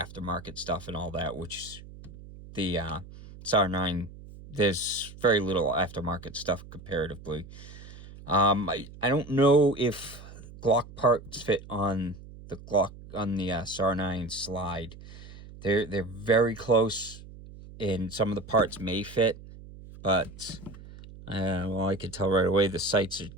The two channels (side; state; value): right; noise; hum, 17 dB below the sound